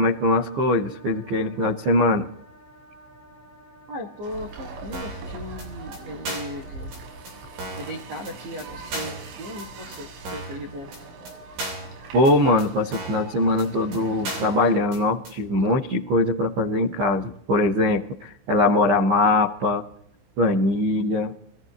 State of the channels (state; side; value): late; left; 15 ms